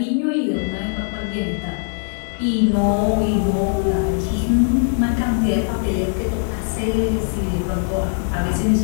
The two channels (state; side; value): silent; right; digital silence